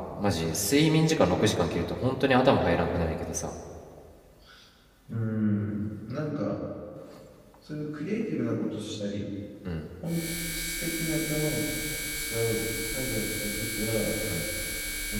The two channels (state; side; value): identical; both; correlation 1.00